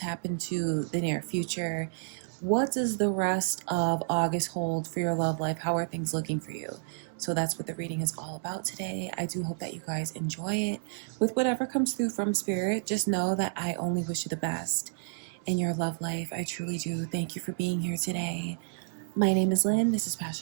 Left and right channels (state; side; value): silent; left; 58 dB below the other